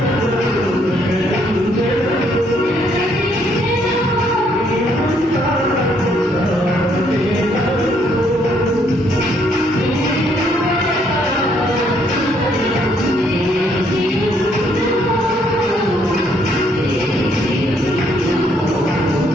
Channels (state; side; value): normal; both; correlation 0.69